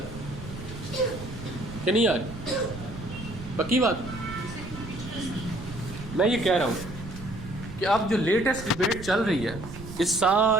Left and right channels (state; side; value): noise; right; rumble, 12 dB below the sound